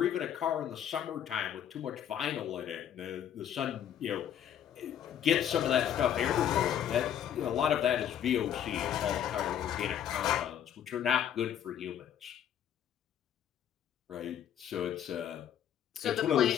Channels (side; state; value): right; quieter; 9.8 dB